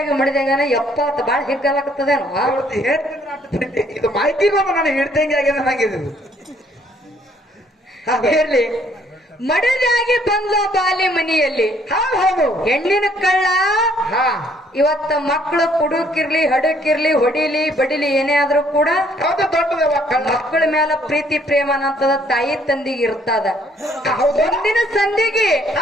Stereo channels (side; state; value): both; normal; correlation 0.64